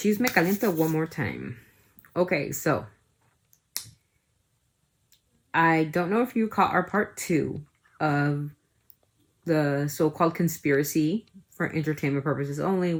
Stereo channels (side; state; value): both; identical; correlation 1.00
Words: Caliente one more time. Okay, so I don't know if you caught our part 2 of the so-called conspiracy for entertainment purposes only.